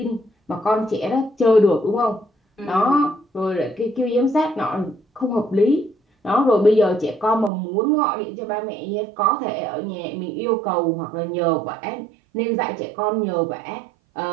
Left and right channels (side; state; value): left; drops out; at 7.5 s